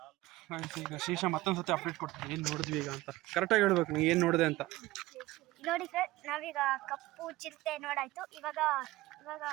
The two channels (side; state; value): left; quieter; 18.2 dB